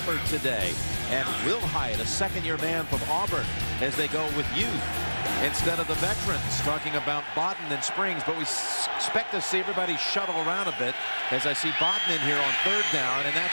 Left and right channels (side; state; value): both; inverted; correlation -1.00